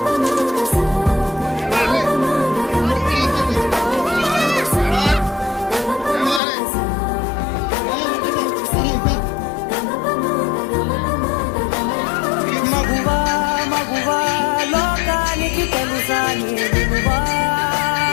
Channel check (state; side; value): drops out; right; at 6.4 s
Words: మగువా మగువా లోకానికి తెలుసా నీ విలువా,